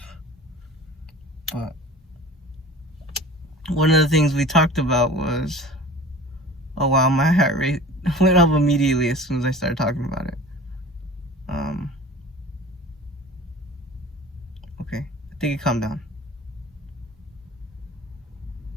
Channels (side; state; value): both; normal; correlation 0.41